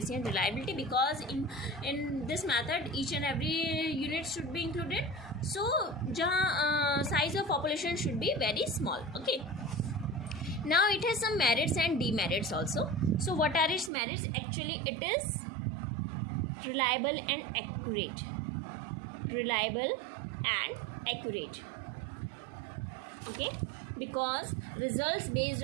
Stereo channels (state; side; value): drops out; left; at 13.9 s